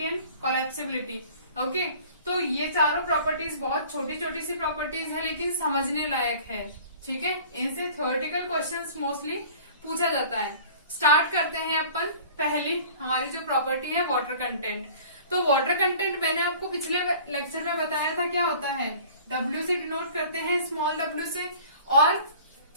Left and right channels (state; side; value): inverted; both; correlation -0.46